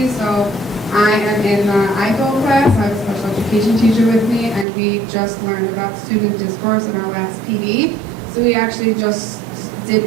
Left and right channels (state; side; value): drops out; left; at 4.7 s